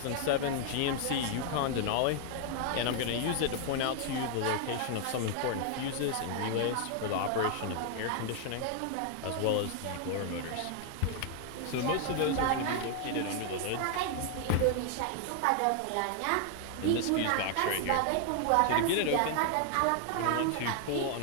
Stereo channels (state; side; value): different; both; correlation 0.00